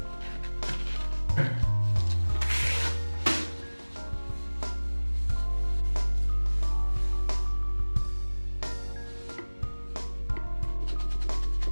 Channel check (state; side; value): inverted; both; correlation -1.00